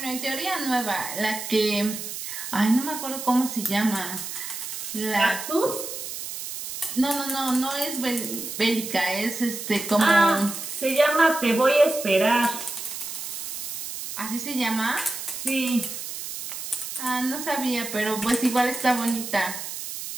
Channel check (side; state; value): right; noise; hiss, 7 dB below the sound